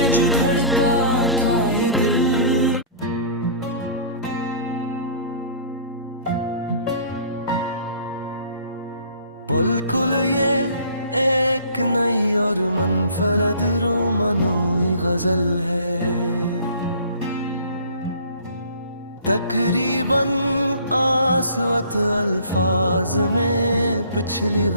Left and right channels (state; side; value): inverted; both; correlation -0.49